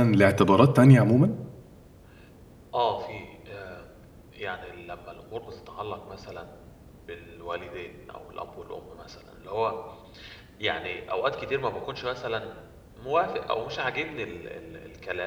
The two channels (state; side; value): identical; both; correlation 1.00